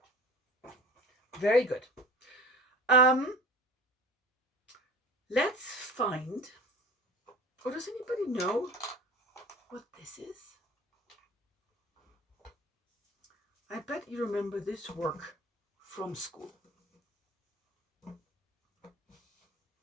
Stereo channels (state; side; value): normal; both; correlation 0.38